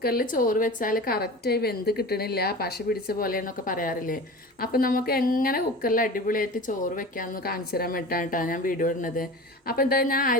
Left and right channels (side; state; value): both; normal; correlation 0.34